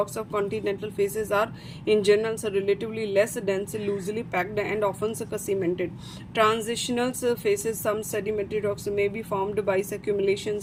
of continental faces are in general relatively less dense, loosely packed and often cemented. Transitional faces, some sedimentary rocks may be formed by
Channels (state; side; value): identical; both; correlation 1.00